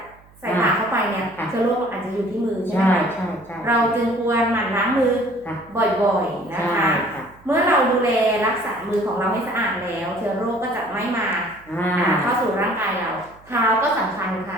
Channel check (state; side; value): noise; right; hum, 27 dB below the sound